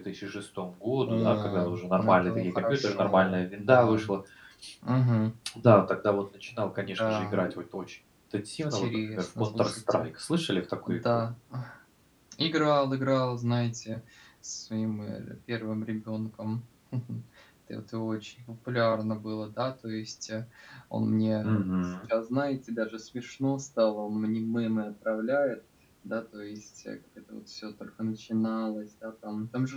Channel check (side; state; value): both; identical; correlation 1.00